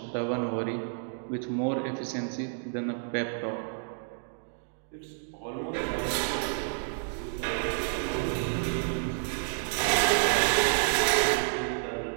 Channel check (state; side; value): silent; left; digital silence